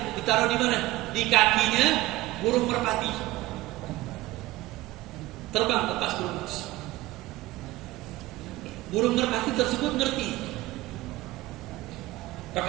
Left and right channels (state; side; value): quieter; left; 17.9 dB